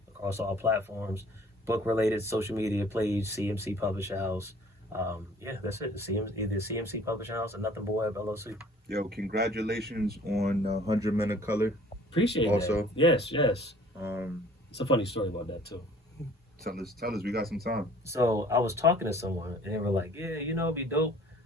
across all platforms. Book related social media page, CMC Publishing House. That's it. Either CMC Publishing House or Nothing But Web LLC. Yo, congratulations on 100 Men of Color. Appreciate also. that. Yes. It's a funny story about that too. Tell us, we got some time. So I was talking to someone and they were like, yeah, it'd be dope.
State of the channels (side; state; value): both; normal; correlation 0.53